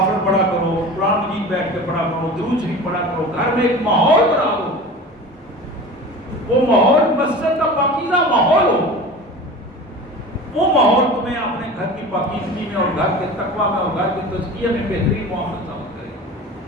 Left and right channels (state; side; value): normal; both; correlation 0.35